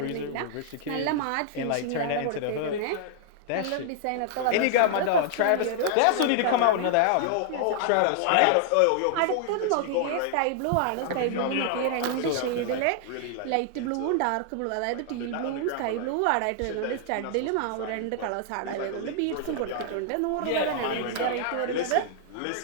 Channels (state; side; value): different; both; correlation 0.00